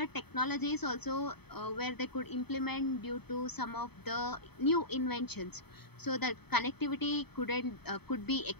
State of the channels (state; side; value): late; right; 0.97 ms